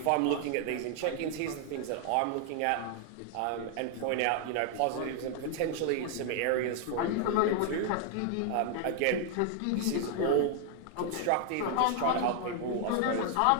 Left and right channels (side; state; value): both; different; correlation 0.00